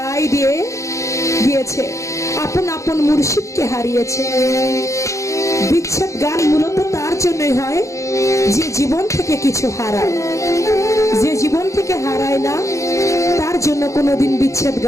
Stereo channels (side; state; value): right; late; 0.15 ms